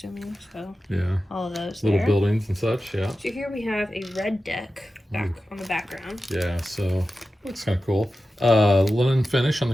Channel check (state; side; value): normal; both; correlation 0.93